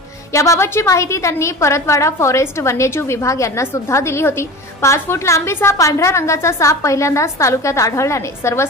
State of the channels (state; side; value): normal; both; correlation 0.33